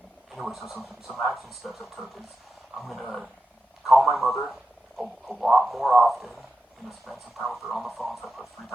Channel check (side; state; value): both; normal; correlation 0.90